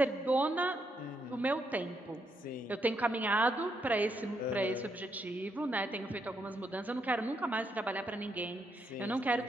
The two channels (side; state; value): both; normal; correlation 0.78